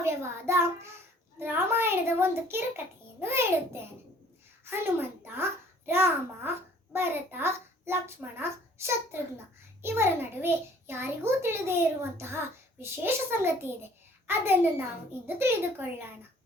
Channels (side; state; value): both; normal; correlation 0.55